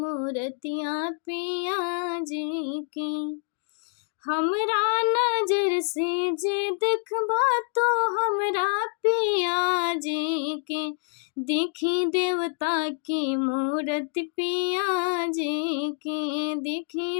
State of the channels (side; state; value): right; silent; 59 dB below the other